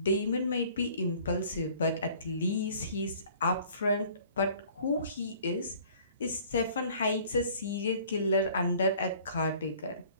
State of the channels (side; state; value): both; inverted; correlation -0.53